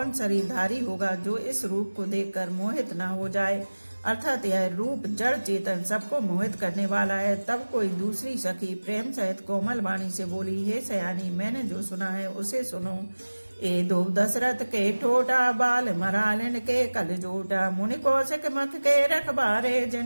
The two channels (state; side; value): inverted; both; correlation -1.00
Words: शरीरधारी होगा जो इस रूप को देखकर मोहित न हो जाए। अर्थात यह रूप जड़ चेतन सबको मोहित करने वाला है। तब कोई दूसरी सखी प्रेम सहित कोमल वाणी से बोली, हे सयानी, मैंने जो सुना है उसे सुनो। ए दो दशरथ के ठोटा बाल मरालन के कल जोटा। मुनि कौशिक मख के रखबारे